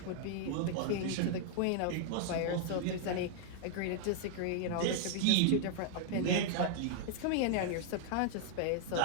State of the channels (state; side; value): different; both; correlation -0.01